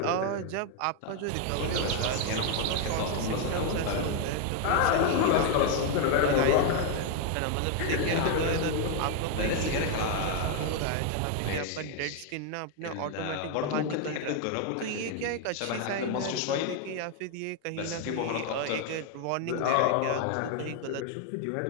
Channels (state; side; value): different; both; correlation 0.00